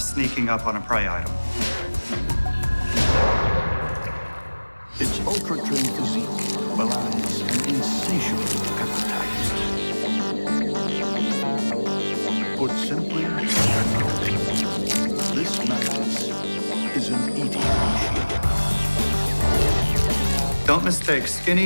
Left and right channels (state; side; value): inverted; both; correlation -1.00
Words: up on a prey item. Its ultra-trim physique belies an insatiable appetite. Put simply, this mantis is an eating machine. Don't mistake